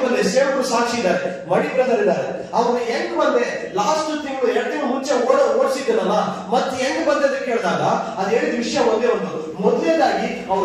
ಬಂದೆ. ಸೇವಕರು ಸಾಕ್ಷಿ ಇದ್ದಾರೆ, ಮಣಿ ಬ್ರದರ್ ಇದ್ದಾರೆ. ಅವ್ರು ಹೆಂಗ್ ಬಂದೆ, ಲಾಸ್ಟ್ ತಿಂಗಳು 2 ತಿಂಗಳು ಮುಂಚೆ ಓಡಿಸಿದ್ದನಲ್ಲ, ಮತ್ತೆ ಹೆಂಗ್ ಬಂದೆ ಅಂತ ಕೇಳಿದಾಗ ಅದು ಹೇಳಿದ ವಿಷಯ ಒಂದೇ ಒಂದು. ಮೊದಲನೇದಾಗಿ ಅವ್ರ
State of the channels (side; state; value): both; identical; correlation 1.00